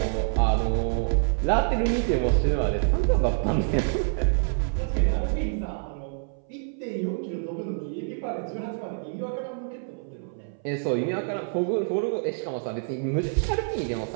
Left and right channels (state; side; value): silent; left; 59 dB below the other